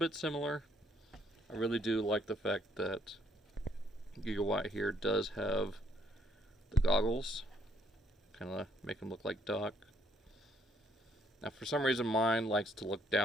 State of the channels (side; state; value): both; normal; correlation 0.68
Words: similar. I really do like the fact that Gigawatt here does have the goggles. Kind of make him look like Doc. Now for some reason mine likes to look